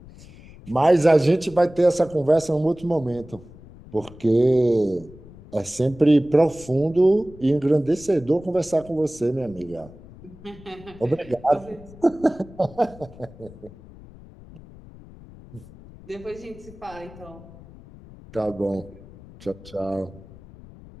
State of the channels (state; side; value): noise; left; rumble, 20 dB below the sound